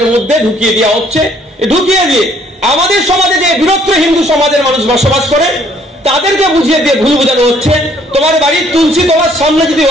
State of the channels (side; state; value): both; normal; correlation 0.63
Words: মধ্যে ঢুকিয়ে দেওয়া হচ্ছে। ঢুকিয়ে দিয়ে আমাদের সমাজে যে বৃহত্তর হিন্দু সমাজের মানুষ বসবাস করে তাদেরকে বুঝিয়ে দিয়ে ভুল বোঝানো হচ্ছে। তোমার বাড়ির তুলসী তোমার সামনে যদি